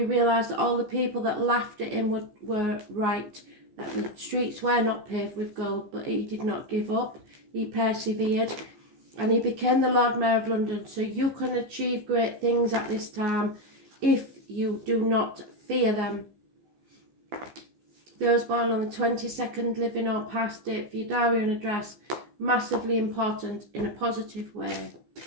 realised that all the people that laughed at him were right, that the streets were not paved with gold, but he did not give up. He persevered, and he became the Lord Mayor of London. So you can achieve great things at this time if you do not fear them. Those born on the 22nd, living or past, date for your diary and address. massively important in a positive way.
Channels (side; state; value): left; late; 14 ms